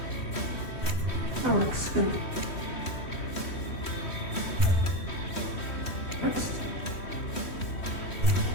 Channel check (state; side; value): late; right; 3.1 ms